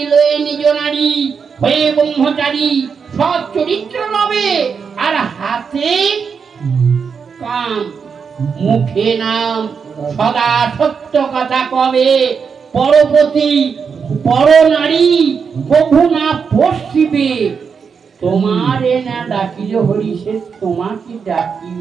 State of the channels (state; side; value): quieter; left; 6.1 dB